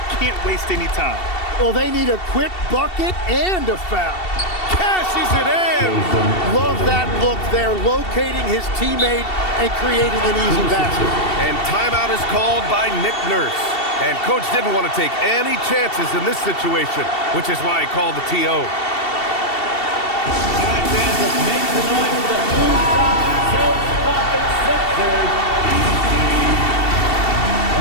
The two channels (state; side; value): late; right; 2.7 ms